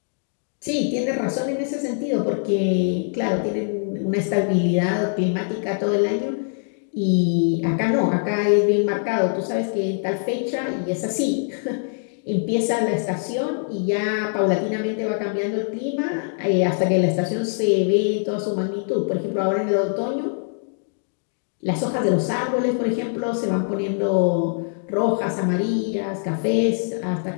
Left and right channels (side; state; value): right; silent; digital silence